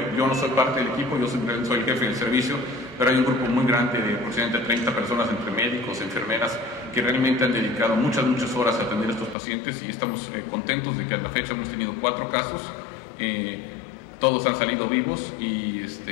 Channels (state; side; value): drops out; right; at 9.3 s